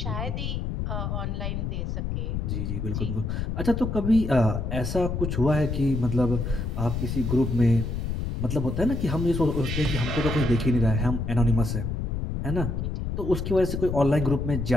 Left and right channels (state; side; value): noise; left; rumble, 3 dB below the sound